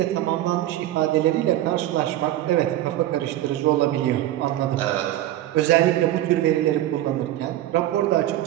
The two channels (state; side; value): quieter; left; 13.9 dB